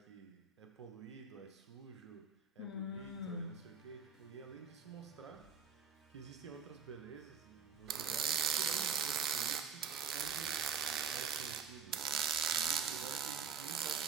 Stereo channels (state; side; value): quieter; left; 6.7 dB